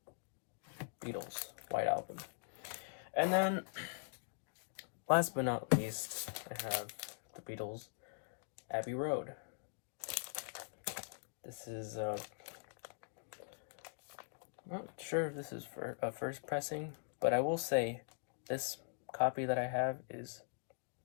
Beatles White Album. And then, last but not least, I have the Beatles Abbey Road. This is I'm not sure if this is for a first pressing, but I will say this copy that I have is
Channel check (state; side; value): silent; right; digital silence